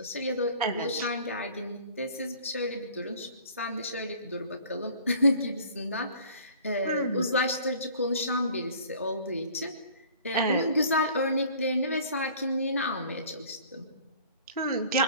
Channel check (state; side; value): inverted; both; correlation -0.49